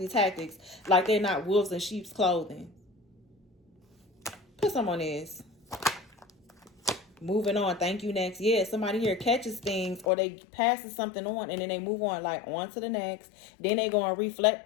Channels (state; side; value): drops out; right; at 10.1 s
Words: tactics like they're not wolves in sheep's clothing. Put some on this. Moving on. Thank you. Next. Yeah, somebody here catches things or they passes something on and then they move on, like on to the next. Then they go and